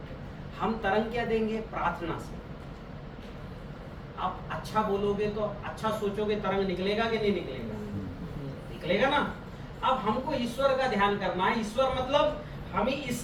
हम तरंग क्या देंगे? प्रार्थना से। आप अच्छा बोलोगे तो, अच्छा सोचोगे, तरंग निकलेगा कि नहीं निकलेगा? निकलेगा ना। अब हमको ईश्वर का ध्यान करना है, ईश्वर मतलब हमें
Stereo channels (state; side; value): identical; both; correlation 1.00